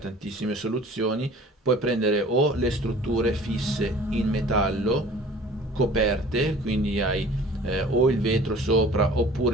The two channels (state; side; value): normal; both; correlation 0.47